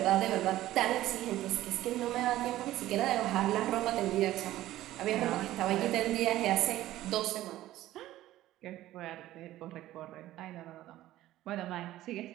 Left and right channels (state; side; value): quieter; left; 14.8 dB